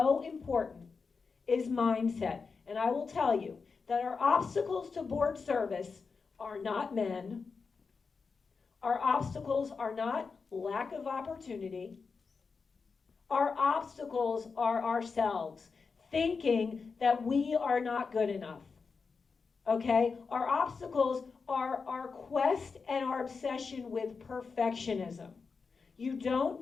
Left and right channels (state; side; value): quieter; right; 5.0 dB